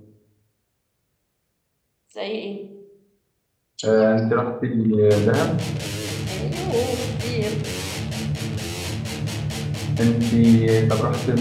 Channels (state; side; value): identical; both; correlation 1.00